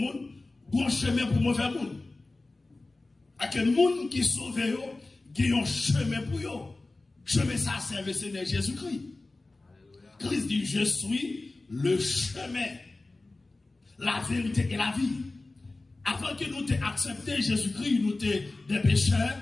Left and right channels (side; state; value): right; quieter; 3.2 dB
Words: bon chemin pour mauvais monde. À quel monde qui sauve, il y a un chemin pour eux. Chemin, ça serve le Seigneur Jésus-Christ. Christ dit, je suis le chemin, la vérité et la vie. Avant que nous t'ayons accepté Jésus-Christ, nous étions des pécheurs